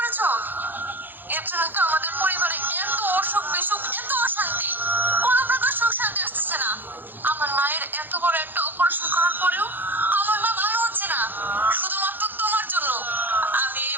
এর জন্য তো আমাদের পরিবারে এত অসুখ বিসুখ, এত অশান্তি, কোনো প্রকার সুখ শান্তি আসতেছে না। আমার মায়ের এত বড় একটা অপারেশন করার পরেও আমার মা ভালো হচ্ছে না, শুধুমাত্র তোমার জন্য। আমি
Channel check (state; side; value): late; left; 0.090 ms